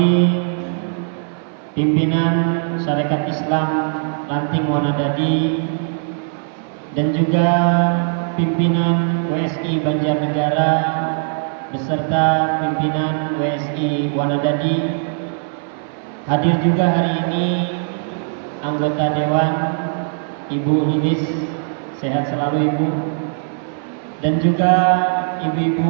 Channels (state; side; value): silent; left; 58 dB below the other